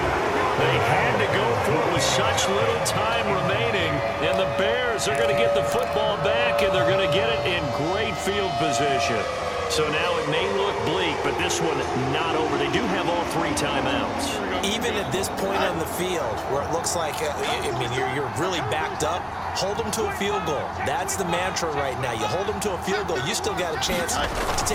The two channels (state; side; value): identical; both; correlation 1.00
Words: They had to go for it with such little time remaining, and the Bears are going to get the football back, and they're going to get it in great field position. So now it may look bleak, but this one not over. They do have all 3 timeouts. Even at this point on the field, where it looks like, you're really backed up, hold them to a field goal. That's the mantra right now. You hold them to a field goal, you still got a chance to